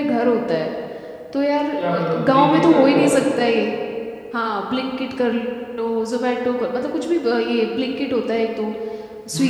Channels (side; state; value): both; identical; correlation 1.00